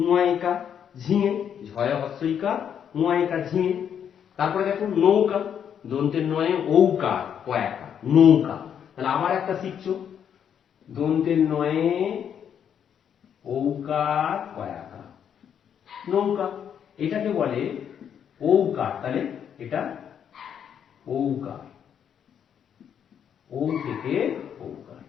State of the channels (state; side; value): quieter; right; 8.5 dB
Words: ঝিঙে। ঝয়ে হস্যইকার, উয়াইকার, ঝিঙে। তারপরে দেখো নৌকা, দন্তের নয়ে ঔকার, কয়াকার, নৌকা। তাহলে আবার একটা শিখছো, দন্তের নয়ে ঔকার, কয়াকার, নৌকা। এটাকে বলে ঔকার। তাহলে এটা ঔকার, ও থেকে ঔকার।